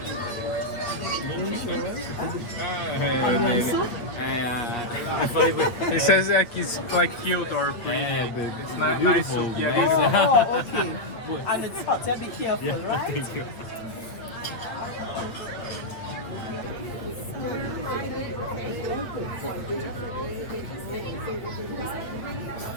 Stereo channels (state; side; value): late; right; 8.5 ms